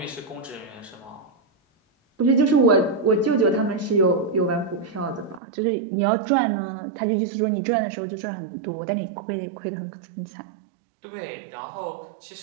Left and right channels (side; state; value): left; drops out; at 5.4 s